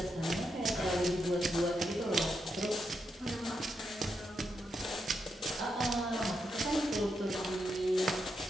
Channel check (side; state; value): both; normal; correlation 0.83